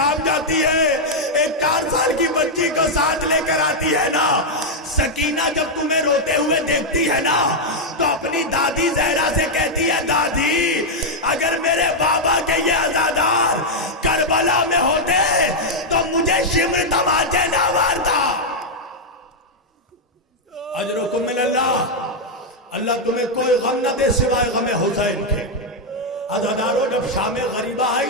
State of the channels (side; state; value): both; normal; correlation -0.02